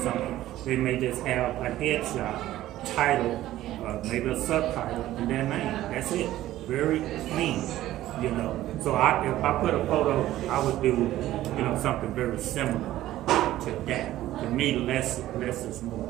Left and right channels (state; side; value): quieter; left; 14.5 dB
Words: something. They may just have a headshot, title, maybe a subtitle, and their name. That's it. Very clean, you know. So if I put a photo, I would do, you know, something very similar to that. To me, less is more.